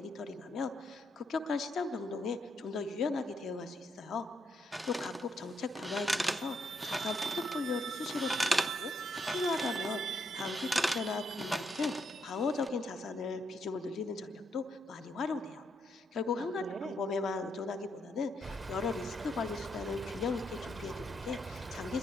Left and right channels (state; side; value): normal; both; correlation 0.77